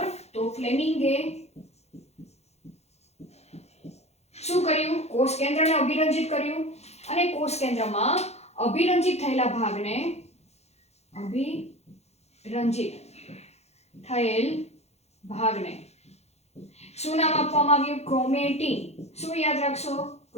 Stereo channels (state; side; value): late; right; 0.31 ms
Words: તો ફ્લેમિંગે શું કર્યું? કોષ કેન્દ્રને અભિરંજિત કર્યું અને કોષ કેન્દ્રમાં અભિરંજિત થયેલા ભાગને શું નામ આપવામાં આવ્યું? ક્રોમેટિન. શું યાદ રાખશો?